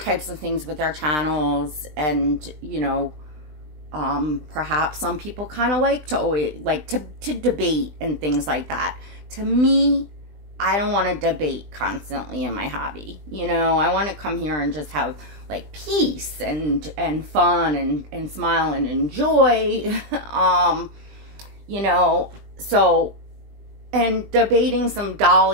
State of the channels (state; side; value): late; left; 20 ms